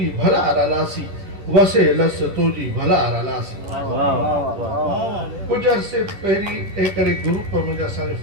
भला लासी वसे लस तुंहिंजी भला लासी कुझु अरसे पहिरीं हिकिड़े ग्रुप मुंहिंजा असांजे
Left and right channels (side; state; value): left; late; 10 ms